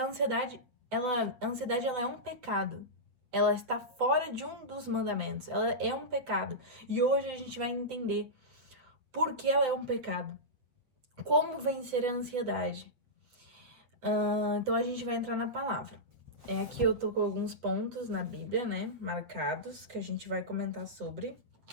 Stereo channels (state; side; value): late; left; 8.2 ms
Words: ansiedade ela é um pecado. Ela está fora de um dos mandamentos. Ela é um pecado. E hoje a gente vai entender por que ela é um pecado. Como vencer a ansiedade. Então a gente vai entrar na palavra. Aqui eu tô com alguns pontos na Bíblia, né? Marcados, que a gente vai comentar sobre.